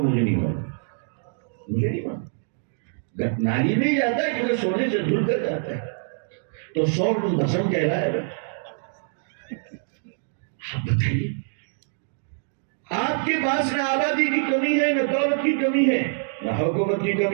مجھے نہیں معلوم. نالی میں ہی جاتا ہے کیونکہ سونے سے دھل کر جاتا ہے تو 100 ٹن بھسم کہلائے گا. آپ بتائیے، آپ کے پاس نہ آبادی کی کمی ہے، نہ دولت کی کمی ہے، نہ حکومت کی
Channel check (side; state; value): left; silent; digital silence